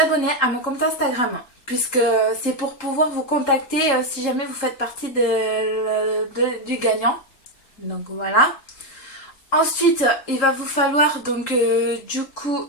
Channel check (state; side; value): late; right; 3.7 ms